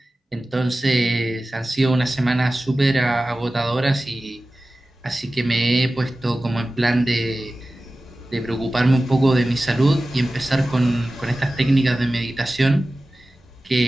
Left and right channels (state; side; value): normal; both; correlation 0.96